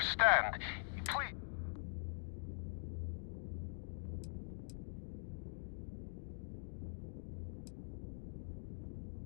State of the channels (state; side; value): silent; right; digital silence